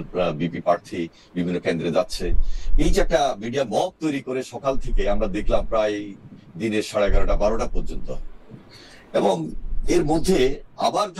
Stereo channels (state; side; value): identical; both; correlation 1.00